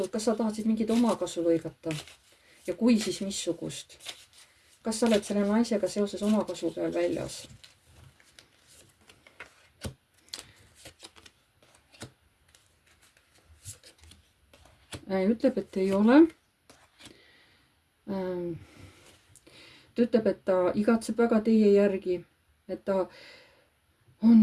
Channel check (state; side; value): identical; both; correlation 1.00